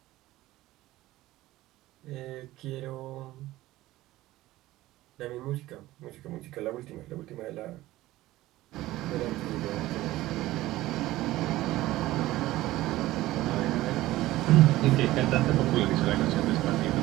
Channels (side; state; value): left; quieter; 16.7 dB